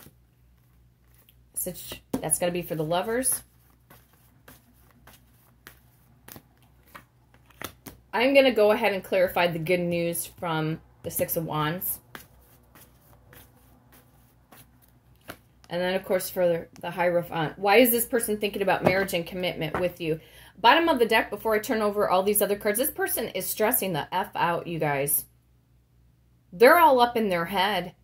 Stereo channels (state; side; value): identical; both; correlation 1.00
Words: That's going to be for the lovers. I'm going to go ahead and clarify the good news from the Six of Wands. And then, of course, for the Hierophant. Why is this person thinking about marriage and commitment with you? Bottom of the deck, before I turn over all these other cards, this person is stressing the F out, you guys. They're all up in their head.